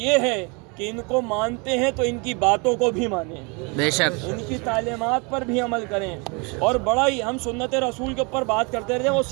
ہے کہ ان کو مانتے ہیں تو ان کی باتوں کو بھی مانیں، بے شک، ان کی تعلیمات پر بھی عمل کریں۔ اور بڑا ہی ہم سنت رسول کے اوپر بات کرتے رہتے ہیں، وہ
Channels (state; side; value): quieter; left; 30.9 dB